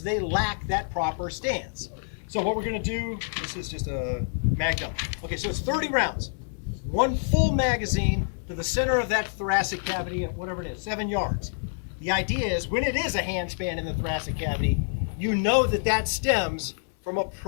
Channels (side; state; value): right; silent; 60 dB below the other